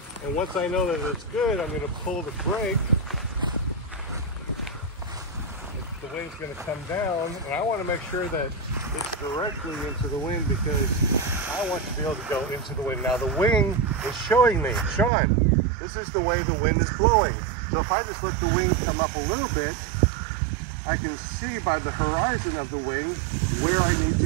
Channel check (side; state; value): left; drops out; at 15.1 s